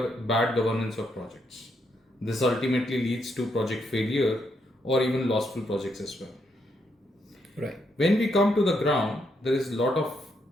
bad governance of projects. This ultimately leads to project failure or even lostful projects as well. Right. When we come to the ground, there is a lot of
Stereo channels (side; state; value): both; normal; correlation 0.78